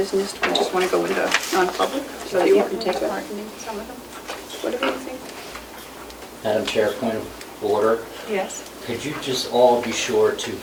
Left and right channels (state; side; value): identical; both; correlation 1.00